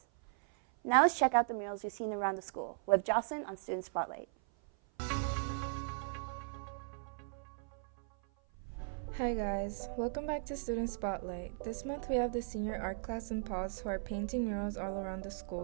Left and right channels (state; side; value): silent; left; 53 dB below the other